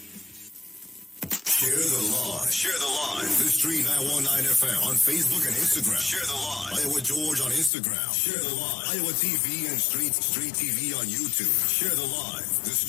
Share the live. Share the live. The Street 919 FM on Facebook and Instagram. Share the live. Iowa George on Instagram. Share the live. Iowa TV and Street TV on YouTube. Share the live. The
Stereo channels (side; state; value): right; drops out; at 7.7 s